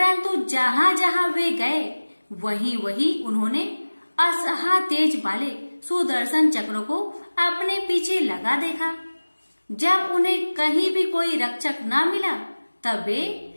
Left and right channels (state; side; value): inverted; both; correlation -1.00